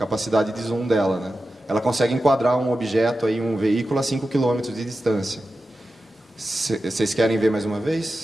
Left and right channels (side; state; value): both; normal; correlation 0.92